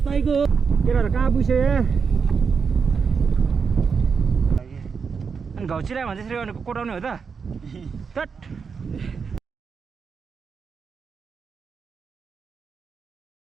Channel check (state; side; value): quieter; left; 5.7 dB